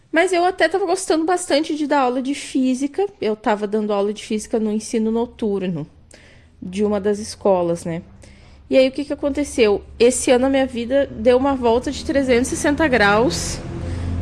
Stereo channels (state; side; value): identical; both; correlation 1.00